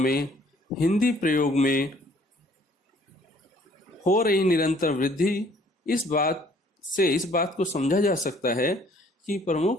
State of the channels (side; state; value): both; normal; correlation 0.59